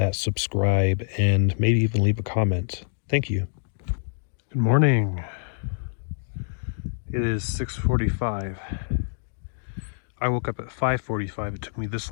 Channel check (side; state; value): right; silent; digital silence